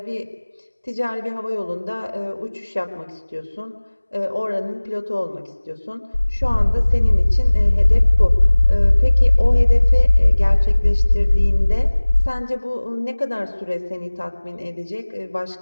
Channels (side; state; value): both; inverted; correlation -1.00